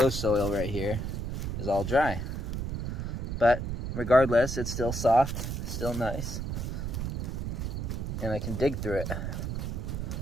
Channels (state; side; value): noise; right; rumble, 3 dB below the sound